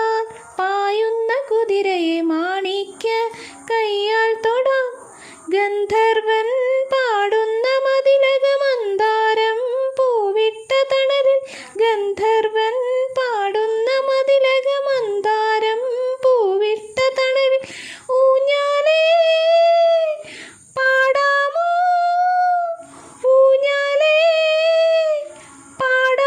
പായുന്ന കുതിരയെ മാണിക്യ കയ്യാൽ തൊടാം. ഗന്ധർവൻ പാടുന്ന മതിലക മന്ദാരം പൂവിട്ട തണലിൽ. ഗന്ധർവൻ പാടുന്ന മതിലക മന്ദാരം പൂവിട്ട തണലിൽ. ഊഞ്ഞാലേ പാടാമോ, ഊഞ്ഞാലേ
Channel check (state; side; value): identical; both; correlation 1.00